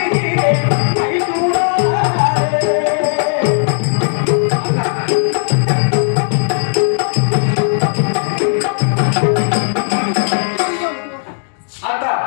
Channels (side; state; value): right; silent; digital silence